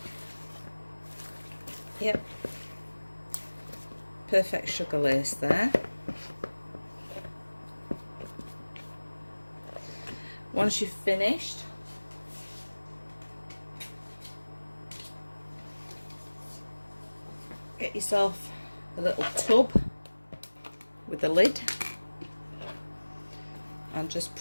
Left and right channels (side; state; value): both; inverted; correlation -1.00